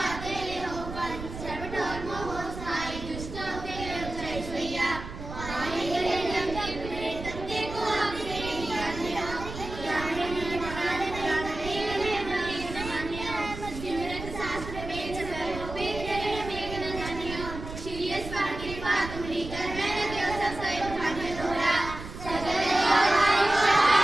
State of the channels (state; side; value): noise; right; rumble, 10 dB below the sound